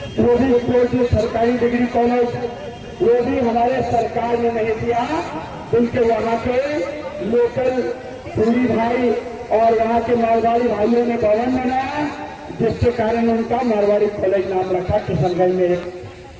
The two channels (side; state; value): both; identical; correlation 1.00